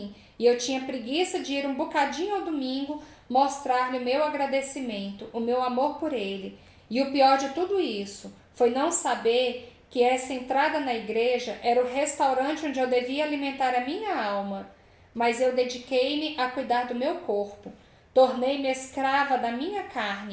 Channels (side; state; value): both; identical; correlation 1.00